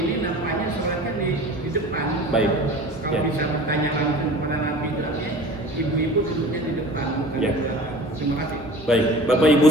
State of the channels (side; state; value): both; normal; correlation 0.40